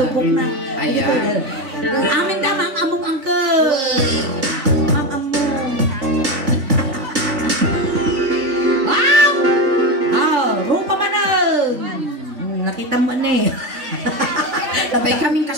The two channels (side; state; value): left; late; 3.5 ms